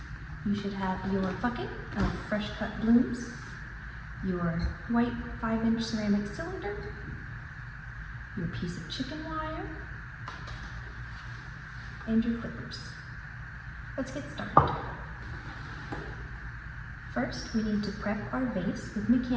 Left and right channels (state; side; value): identical; both; correlation 1.00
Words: You should have your bucket of fresh cut blooms, your white 5-inch ceramic cylinder, your piece of chicken wire, and your clippers. Let's get started. First, we need to prep our vase with